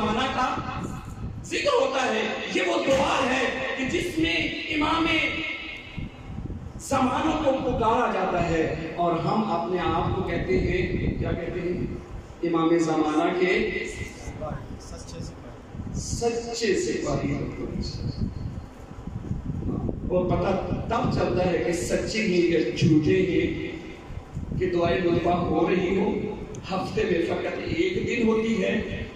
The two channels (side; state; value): both; identical; correlation 1.00